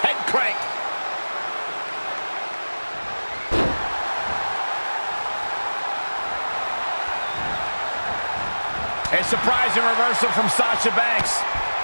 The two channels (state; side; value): inverted; both; correlation -1.00